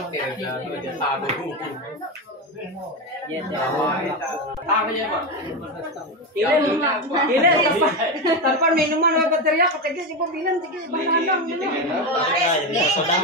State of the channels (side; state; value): both; normal; correlation 0.14